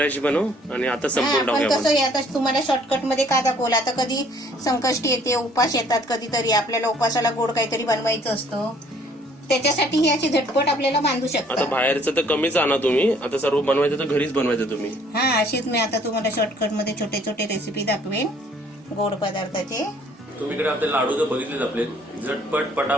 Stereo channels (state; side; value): normal; both; correlation 0.60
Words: बनव आणि आता संपून पण टाकूया कसं आहे, आता तुम्हाला शॉर्टकट मध्ये का दाखवलं. आता कधी संकष्टी येते, उपास येतात कधीतरी, आपल्याला उपासाला गोड काहीतरी बनवायचं असतं, त्याच्यासाठी ही अशी झटपट आपल्याला बांधू आता शकता. बाहेरचं तर कमीच आणा तुम्ही. आता सर्व बनवायचं तर घरीच बनवायचं तुम्ही. हा, अशीच मी आता तुम्हाला शॉर्टकट मध्ये छोटे छोटे रेसिपी दाखवेन गोड पदार्थाचे. तुम्ही इकडे आपले लाडू तर बघितलेच आपले, झटपट